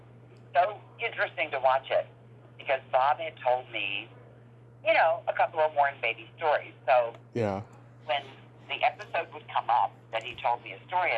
so interesting to watch it because Bob had told me, a couple of Warren Beatty stories. So when the episode would come up that he told me a story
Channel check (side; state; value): both; identical; correlation 1.00